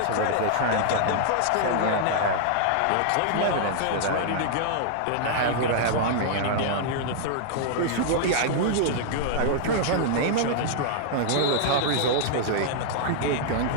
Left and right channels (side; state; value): both; different; correlation -0.01